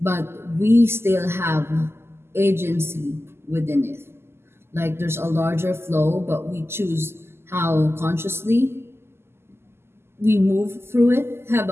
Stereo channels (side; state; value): left; late; 0.12 ms